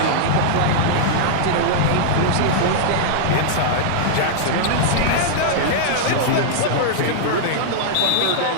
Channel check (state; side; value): different; both; correlation -0.01